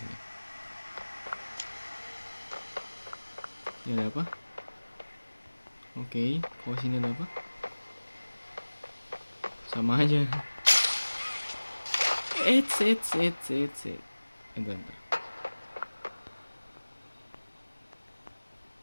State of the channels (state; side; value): inverted; both; correlation -1.00